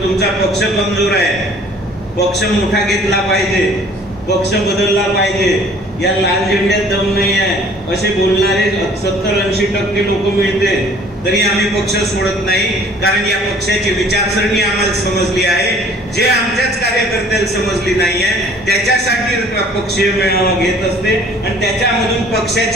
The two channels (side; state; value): both; normal; correlation 0.53